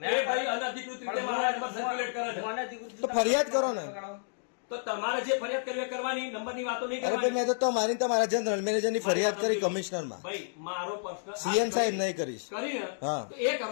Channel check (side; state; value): right; silent; digital silence